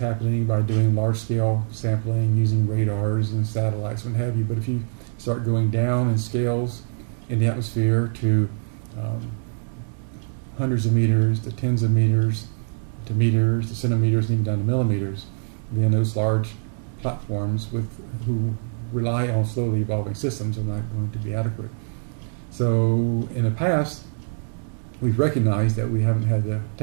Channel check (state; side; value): silent; left; 62 dB below the other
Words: by doing large scale sampling using radars and satellites and what have you. But if you start going down in scales in the atmosphere to hundreds of meters, to tens of meters, to meters, to centimeters, and even down to millimeters, then those large platforms who rely on slowly evolving systems are not going to be adequate. So in the past, we've recognized that we haven't had the